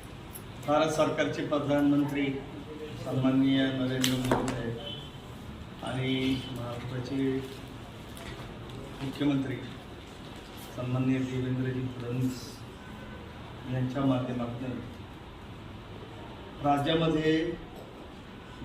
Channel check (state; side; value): identical; both; correlation 1.00